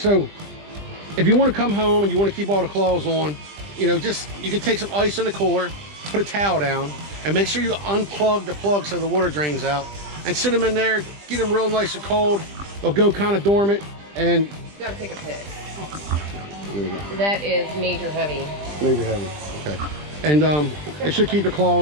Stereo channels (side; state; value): left; late; 20 ms